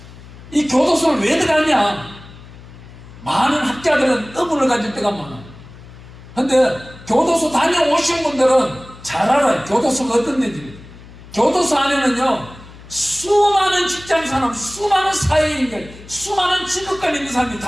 이 교도소를 왜 들어갔냐? 많은 학자들은 의문을 가질 때가 많아요. 근데 교도소 다녀오신 분들은 잘 알아요. 교도소가 어떤 데인지. 교도소 안에는요, 수많은 직장사람, 수많은 사회인들, 수많은 직업관 있는 사람이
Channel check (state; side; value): noise; left; hum, 18 dB below the sound